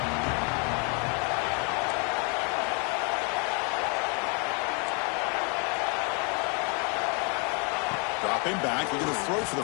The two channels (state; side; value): quieter; right; 35.6 dB